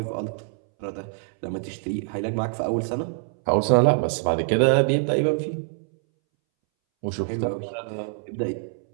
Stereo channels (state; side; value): silent; left; 62 dB below the other